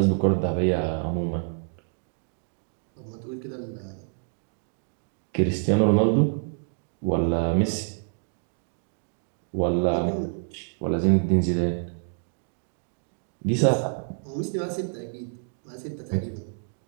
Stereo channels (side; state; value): left; silent; digital silence